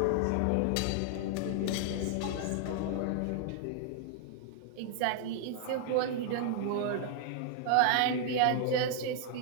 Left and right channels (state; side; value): different; both; correlation 0.00